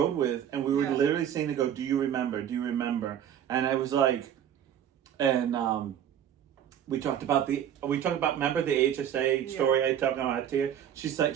with, and we were Yeah. literally saying to go, do you remember? Do you remember? And I was like, and we talked about remember the HSA story I talked about here? She's like,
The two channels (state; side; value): quieter; left; 9.8 dB